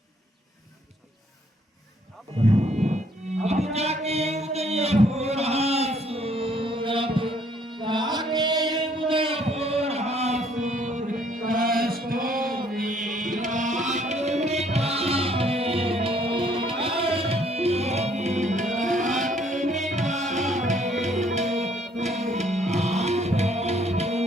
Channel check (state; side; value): normal; both; correlation 0.64